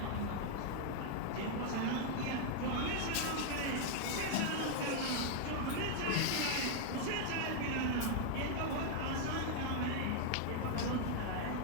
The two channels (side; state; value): both; different; correlation 0.00